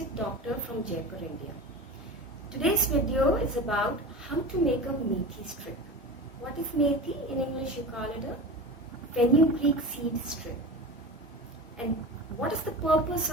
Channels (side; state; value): both; normal; correlation 0.30